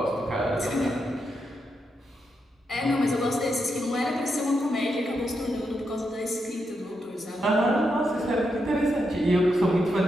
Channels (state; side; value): normal; both; correlation 0.83